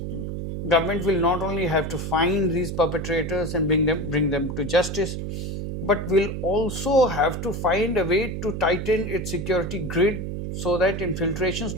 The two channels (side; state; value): right; noise; hum, 5 dB below the sound